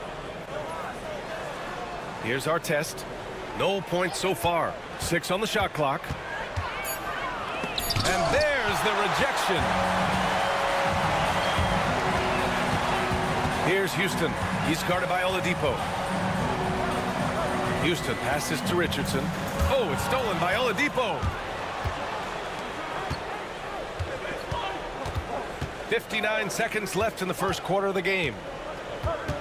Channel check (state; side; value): identical; both; correlation 1.00